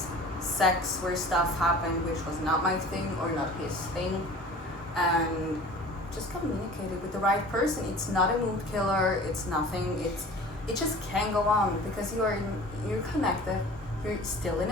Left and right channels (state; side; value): normal; both; correlation 0.42